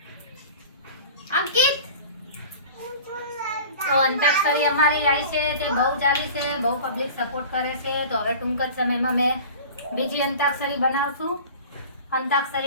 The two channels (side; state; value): both; inverted; correlation -0.40